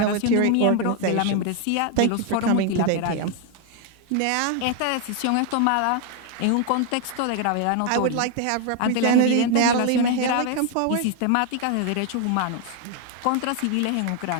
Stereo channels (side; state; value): both; different; correlation 0.01